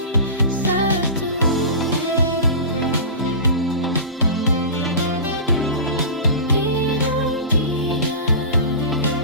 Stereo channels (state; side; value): inverted; both; correlation -0.30